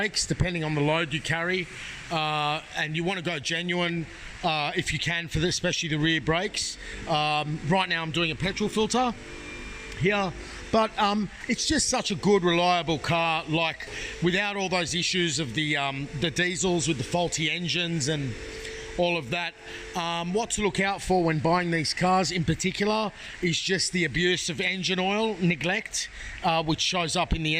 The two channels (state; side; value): identical; both; correlation 1.00